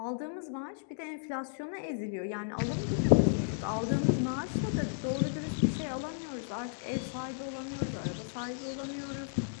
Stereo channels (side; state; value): right; silent; digital silence